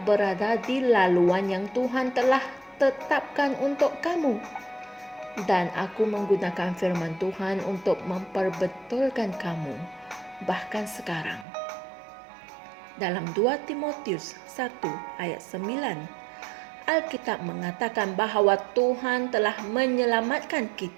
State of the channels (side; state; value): left; drops out; at 11.5 s